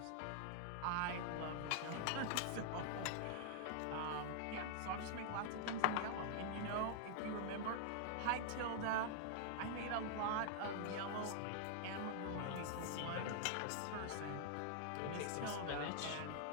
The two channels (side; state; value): both; different; correlation 0.00